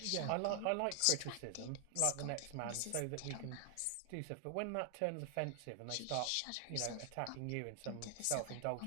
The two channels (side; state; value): both; different; correlation 0.00